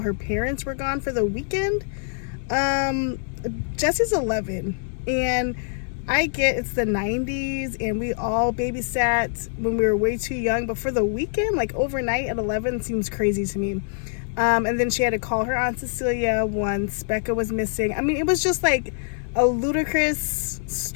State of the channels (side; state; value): right; silent; digital silence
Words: her parents were gone for the weekend. Jessie's 11, and I get it's the 90s and we all babysat when we were way too young, but for the weekend, like overnight at 11, seems crazy to me. And then she had to call her Aunt Cecilia once Becca was missing. I mean, it was just like a ludicrous